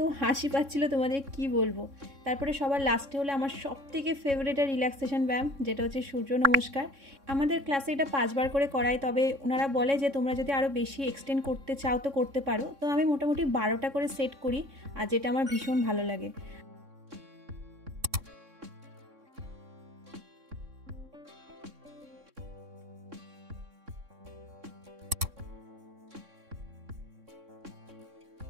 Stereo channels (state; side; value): late; left; 3.6 ms